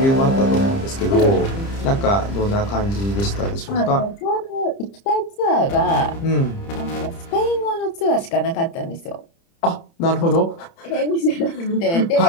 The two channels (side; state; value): right; late; 30 ms